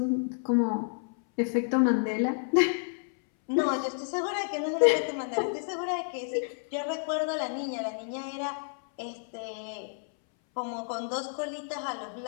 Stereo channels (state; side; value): silent; right; 58 dB below the other